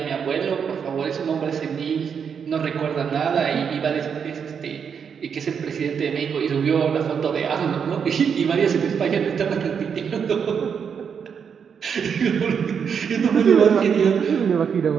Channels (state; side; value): quieter; left; 6.9 dB